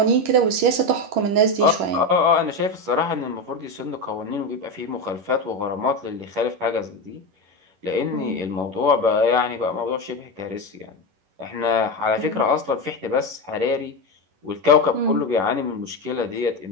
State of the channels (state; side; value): late; left; 11 ms